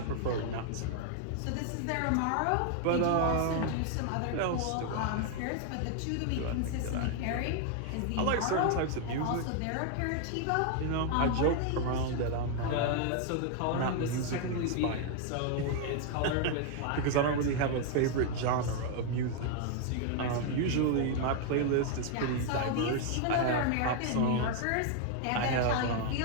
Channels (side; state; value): both; different; correlation 0.00